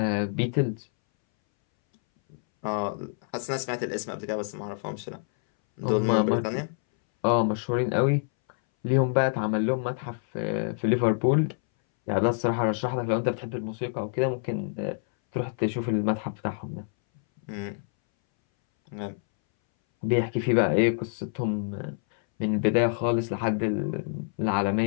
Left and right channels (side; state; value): right; silent; 60 dB below the other